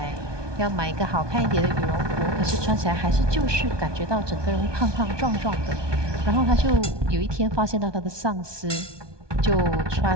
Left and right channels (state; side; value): late; left; 1.2 ms